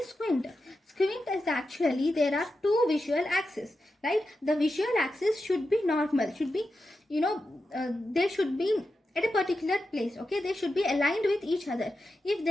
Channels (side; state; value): both; normal; correlation 0.90